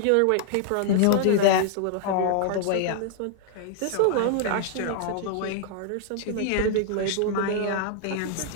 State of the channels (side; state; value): both; different; correlation 0.00